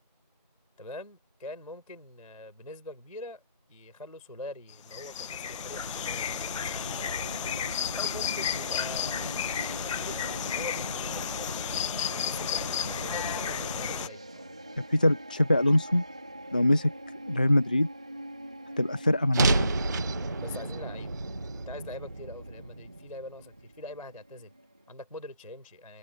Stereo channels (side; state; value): both; inverted; correlation -0.75